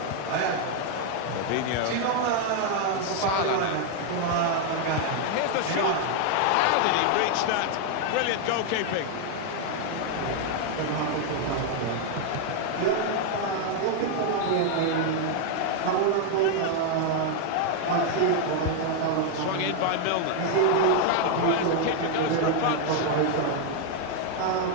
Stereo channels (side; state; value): both; different; correlation 0.00